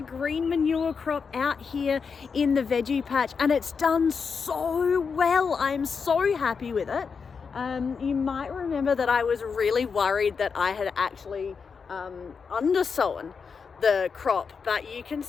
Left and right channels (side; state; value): right; quieter; 5.7 dB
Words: manure crop out here in the veggie patch, and it's done so well. I'm so happy with it. You might remember that I was really worried that I had actually undersown the crop, but you can